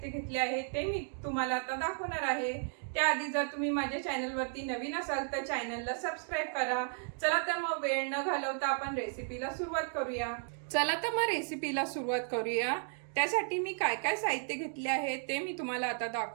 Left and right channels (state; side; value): silent; left; 55 dB below the other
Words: घेतले आहे ते मी तुम्हाला आता दाखवणार आहे। त्याआधी जर तुम्ही माझ्या चॅनलवरती नवीन असाल तर चॅनलला सबस्क्राइब करा। चला तर मग वेळ न घालवता आपण रेसिपीला सुरुवात करूया। चला तर मग रेसिपीला सुरुवात करूया। त्यासाठी मी काय काय साहित्य घेतले आहे ते मी तुम्हाला आता